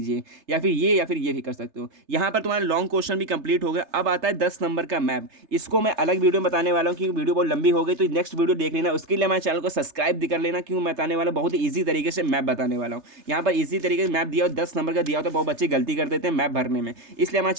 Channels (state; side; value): late; left; 3.3 ms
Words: या फिर ये भी कर सकते हो। यहाँ पर तुम्हारा लॉन्ग क्वेश्चन भी कंप्लीट हो गया। अब आता है 10 नंबर का मैप। इसको मैं अलग वीडियो में बताने वाला हूँ क्योंकि वीडियो बहुत लंबी हो गई, तो नेक्स्ट वीडियो देख लेना। उसके लिए हमारे चैनल को सब्सक्राइब भी कर लेना, क्यों मैं बताने वाला बहुत ही ईजी तरीके से मैप बताने वाला हूँ। यहाँ पर ईजी तरीके से मैप दिया हो, 10 नंबर का दिया हो, तो बहुत बच्चे गलती कर देते हैं मैप भरने में, इसलिए हमारे